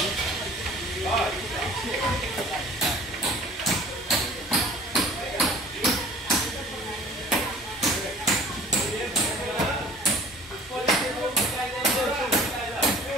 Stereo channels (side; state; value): both; normal; correlation 0.48